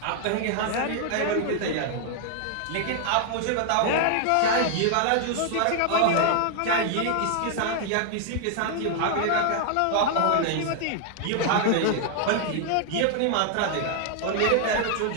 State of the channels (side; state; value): both; different; correlation 0.00